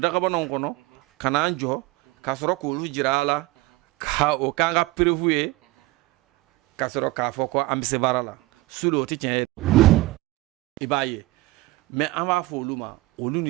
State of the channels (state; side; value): quieter; left; 19.9 dB